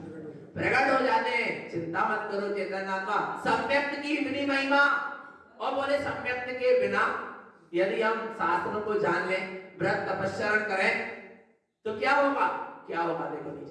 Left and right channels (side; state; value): both; identical; correlation 1.00